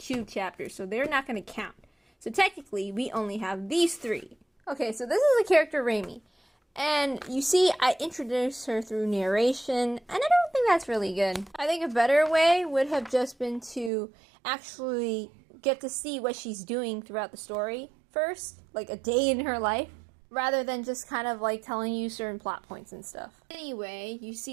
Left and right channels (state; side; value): drops out; left; at 13.9 s